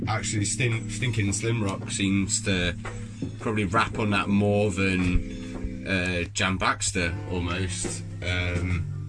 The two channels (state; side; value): identical; both; correlation 1.00